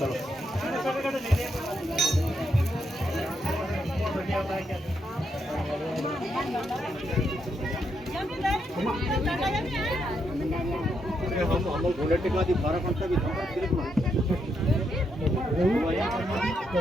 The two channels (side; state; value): both; normal; correlation 0.79